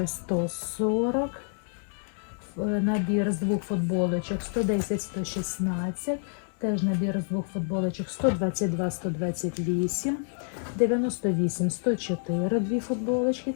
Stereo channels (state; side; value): silent; right; 59 dB below the other